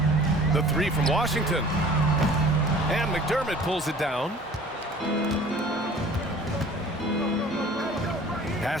The 3 from Washington. And McDermott pulls it down.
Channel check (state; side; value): normal; both; correlation 0.47